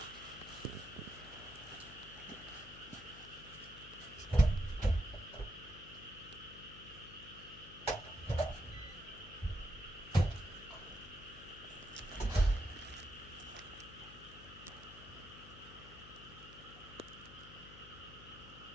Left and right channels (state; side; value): noise; left; hum, 16 dB below the sound